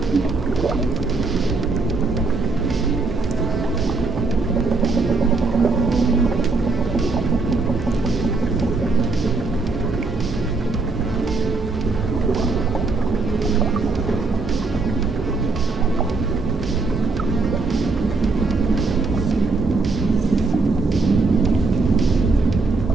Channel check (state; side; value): quieter; left; 3.8 dB